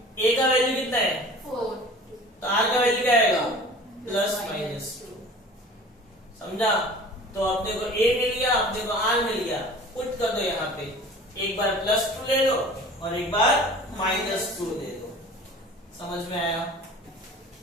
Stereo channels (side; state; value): both; normal; correlation 0.43